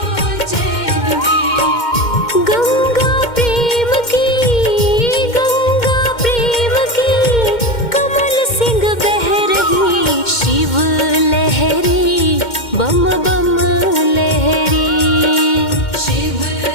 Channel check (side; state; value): right; late; 2.1 ms